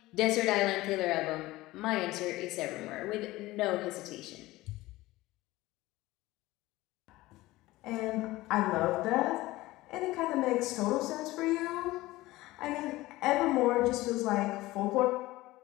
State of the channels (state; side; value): quieter; right; 18.4 dB